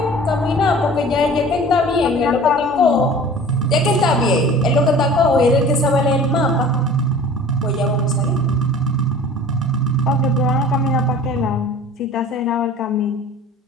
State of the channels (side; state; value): both; normal; correlation 0.43